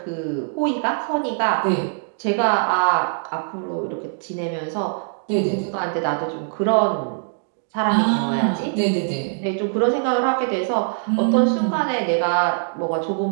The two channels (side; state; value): left; silent; digital silence